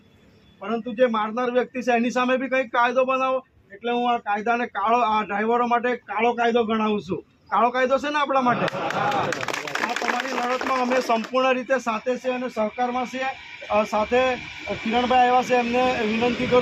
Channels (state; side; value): identical; both; correlation 1.00